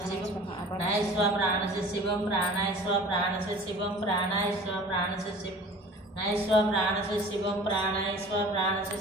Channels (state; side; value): normal; both; correlation 0.44